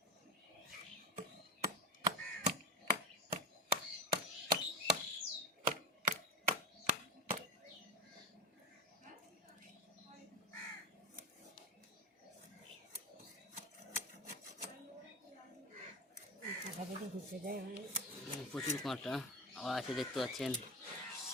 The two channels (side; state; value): both; normal; correlation 0.22